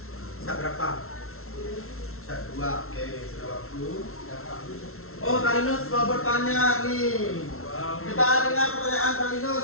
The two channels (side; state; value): right; late; 0.62 ms